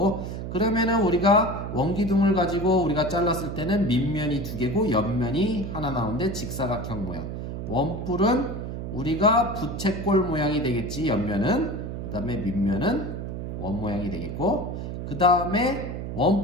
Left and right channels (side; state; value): right; noise; hum, 6 dB below the sound